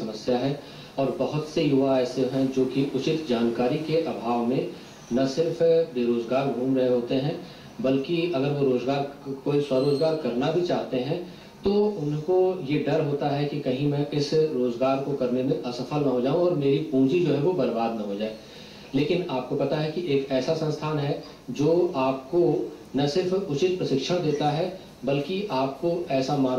है और बहुत से युवा ऐसे हैं जो कि उचित जानकारी के अभाव में न सिर्फ बेरोजगार घूम रहे होते हैं, बल्कि अगर वो कोई स्वरोजगार करना भी चाहते हैं तो उनको ये डर होता है कि कहीं मैं इस रोजगार को करने में असफल न हो जाऊं और मेरी पूंजी जो है वो बर्बाद न हो जाए। लेकिन आपको पता है कि एक ऐसा संस्थान है जो आपको न सिर्फ उचित प्रशिक्षण देता है बल्कि आपको ऐसा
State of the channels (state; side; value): identical; both; correlation 1.00